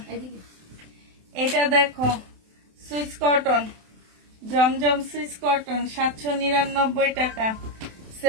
এটা দেখো সুইস কটন, জমজম সুইস কটন 799 টাকা।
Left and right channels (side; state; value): left; late; 27 ms